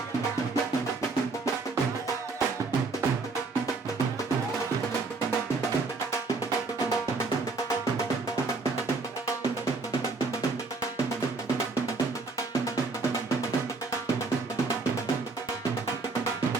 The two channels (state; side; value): quieter; left; 3.9 dB